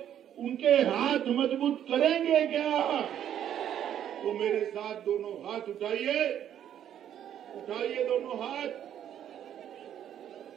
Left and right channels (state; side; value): quieter; left; 10.3 dB